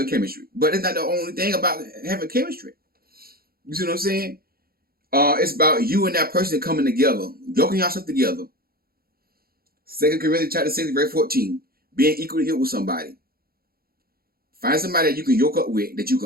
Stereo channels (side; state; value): left; late; 0.44 ms